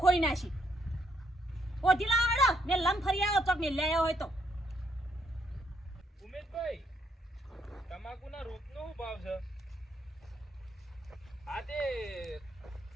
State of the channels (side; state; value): both; normal; correlation 0.72